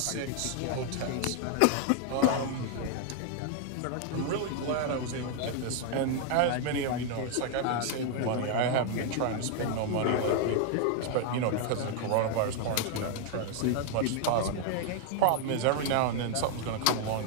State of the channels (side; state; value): both; different; correlation 0.00